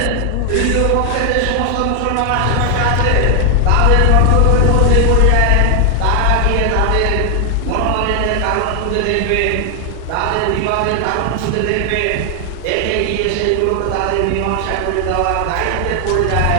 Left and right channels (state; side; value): different; both; correlation 0.00